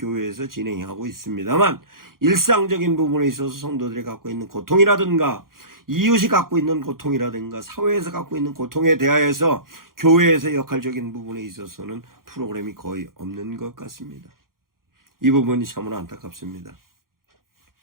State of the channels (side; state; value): left; late; 0.92 ms